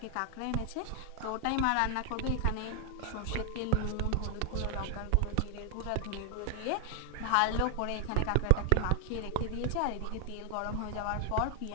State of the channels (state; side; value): different; both; correlation 0.00